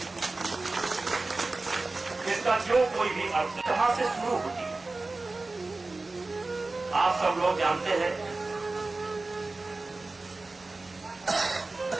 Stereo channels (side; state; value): left; quieter; 3.3 dB